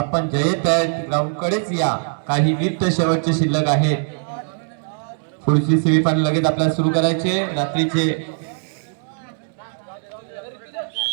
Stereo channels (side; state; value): left; silent; digital silence